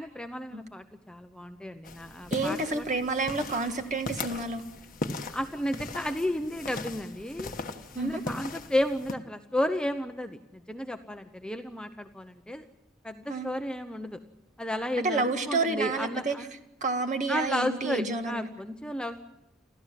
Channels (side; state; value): both; normal; correlation 0.56